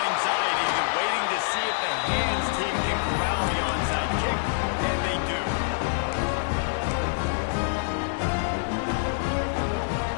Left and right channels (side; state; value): right; silent; digital silence